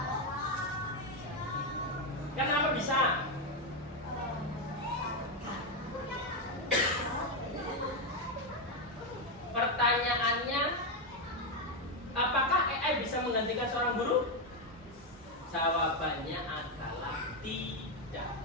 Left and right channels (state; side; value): normal; both; correlation 0.06